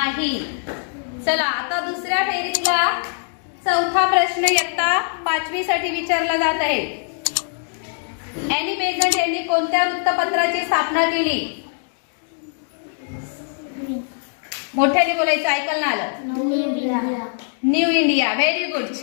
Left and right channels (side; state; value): right; silent; digital silence